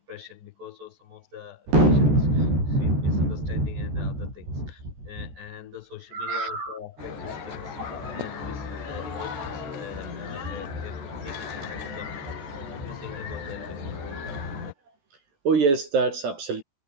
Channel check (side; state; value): left; late; 14 ms